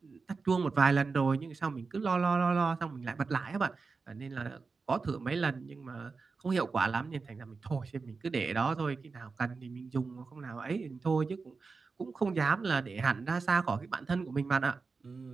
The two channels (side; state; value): left; quieter; 4.5 dB